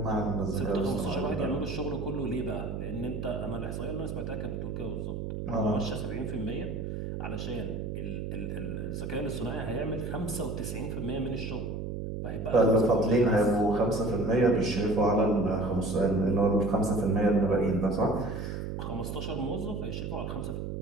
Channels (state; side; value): noise; right; hum, 4 dB below the sound